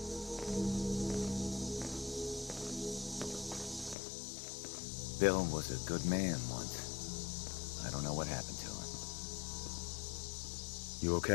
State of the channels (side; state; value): right; drops out; at 4.0 s